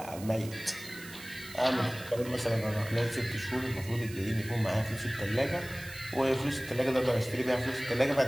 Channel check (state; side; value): noise; right; hiss, 16 dB below the sound